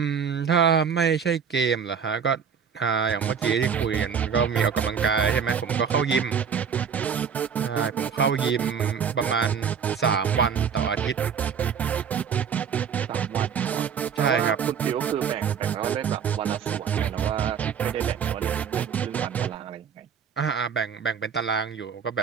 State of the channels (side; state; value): left; quieter; 7.0 dB